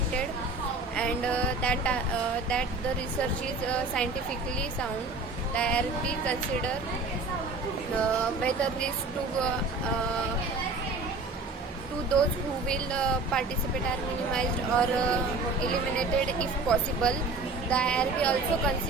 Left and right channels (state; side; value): quieter; left; 3.5 dB